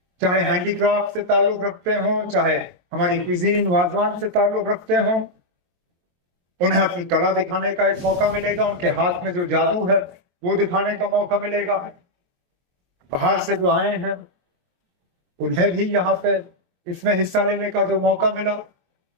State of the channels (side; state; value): left; late; 23 ms